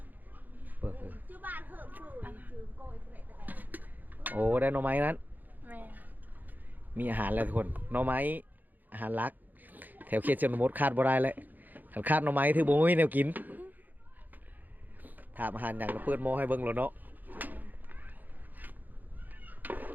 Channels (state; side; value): late; left; 0.085 ms